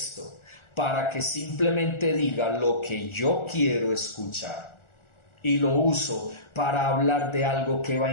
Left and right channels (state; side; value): late; right; 1.4 ms